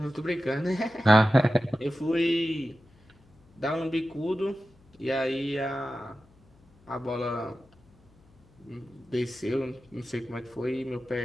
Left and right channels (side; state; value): left; noise; hum, 30 dB below the sound